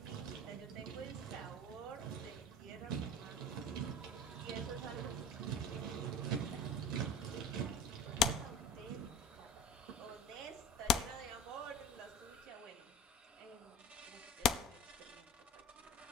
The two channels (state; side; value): normal; both; correlation 0.38